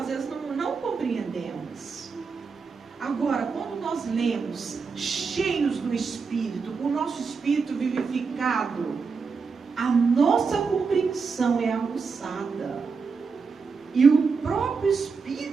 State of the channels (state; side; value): quieter; left; 5.1 dB